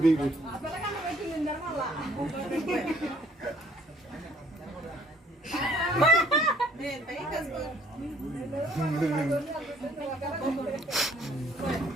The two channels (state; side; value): normal; both; correlation 0.60